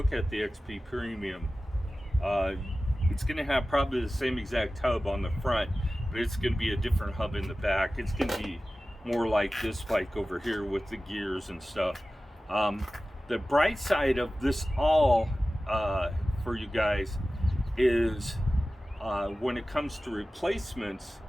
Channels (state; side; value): normal; both; correlation 0.96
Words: at the XP Premium. It's going to have probably the same exact hub on the front, but it's going to be a different hub in the back. It's going to be more like this bike over here with the gears and stuff. The bright side of this all for you guys is when it comes to replacements,